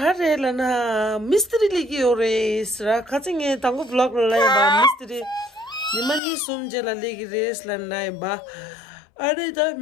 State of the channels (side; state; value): right; drops out; at 6.2 s